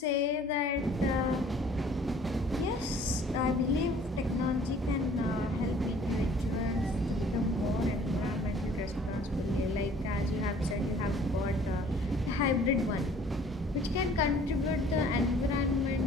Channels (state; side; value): normal; both; correlation 0.54